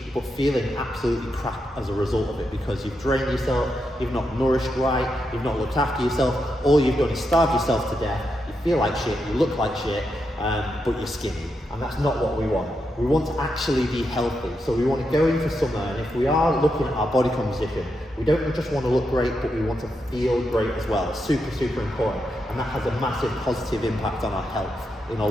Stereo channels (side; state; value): both; normal; correlation 0.84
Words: but feeling absolutely crap as a result of it, because you've drained yourself, you've not nourished right, you've not looked after yourself, all you've done is starve yourself to death, you feel like shit, you look like shit, but you're skinny. And that's not what we want. We want to actually be healthy. So we want to go into summer, and if we are looking at our body composition, we don't just want to look great, but we want to feel great as well. It's super, super important. And that has a massive positive impact on our health in a